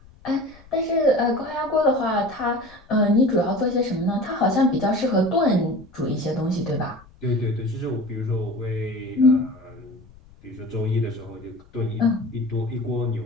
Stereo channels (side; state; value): left; noise; rumble, 25 dB below the sound